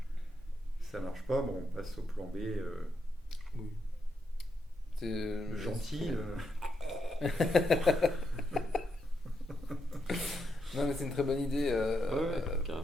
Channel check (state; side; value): normal; both; correlation 0.81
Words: ça marche pas, bon, on passe au plan B. Oui. C'est Gentil. Non, mais c'est une très bonne idée.